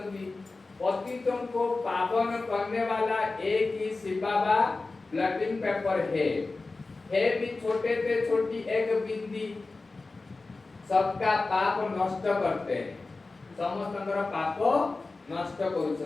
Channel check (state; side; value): quieter; right; 3.6 dB